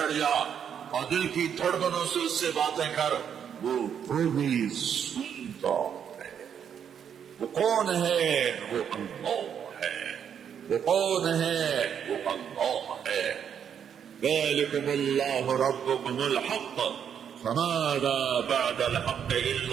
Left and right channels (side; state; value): left; quieter; 8.2 dB